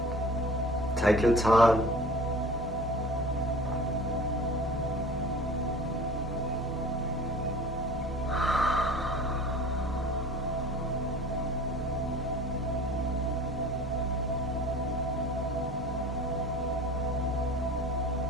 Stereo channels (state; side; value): normal; both; correlation 0.42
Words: Take your time.